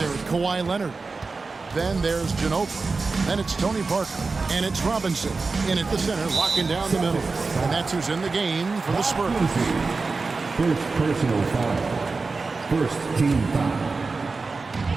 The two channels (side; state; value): left; quieter; 4.1 dB